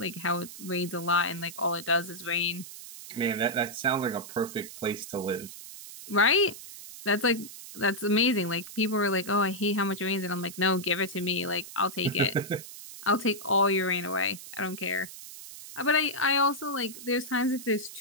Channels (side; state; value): right; noise; hiss, 13 dB below the sound